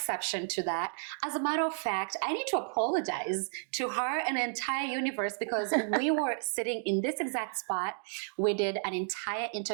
to that. As a matter of fact, I need to apologize to her and the entire universe because we were sitting in this exact spot. We did an entire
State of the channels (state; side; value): silent; left; 56 dB below the other